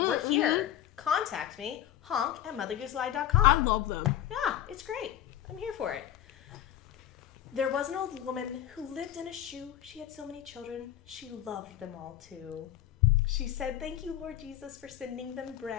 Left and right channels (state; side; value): quieter; right; 11.8 dB